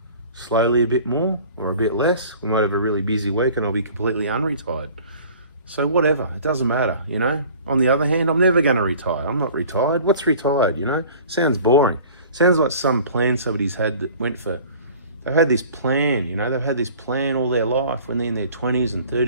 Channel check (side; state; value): both; inverted; correlation -0.46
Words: slowly a bit more, or a bit less. We might have a really busy week and I'll be completely unretired. So whatever, it doesn't matter, you know. On the other hand, I'm never going to retire. I'm not retired. What's retired, you know? Sounds boring. Sounds like some plan somebody's had that went for, they've had this plan, you know, they've had this plan all their life when they're in their 20s and